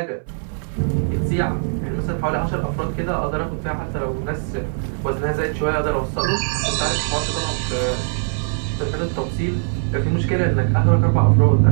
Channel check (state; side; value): silent; left; 58 dB below the other